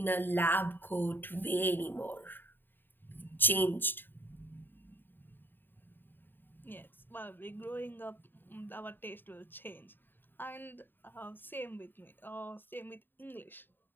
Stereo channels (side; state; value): right; late; 0.094 ms